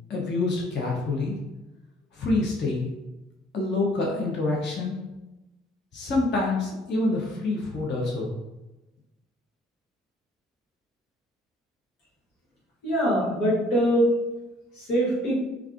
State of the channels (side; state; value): both; normal; correlation 0.60